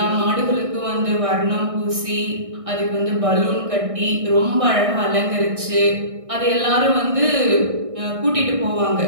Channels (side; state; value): left; late; 1.6 ms